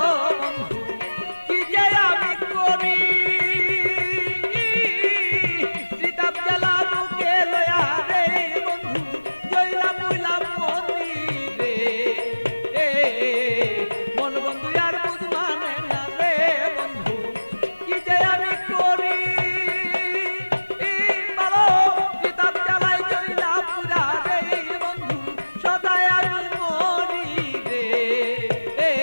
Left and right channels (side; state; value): both; inverted; correlation -1.00